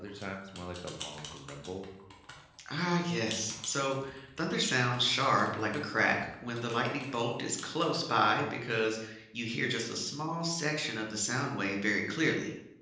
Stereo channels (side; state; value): both; identical; correlation 1.00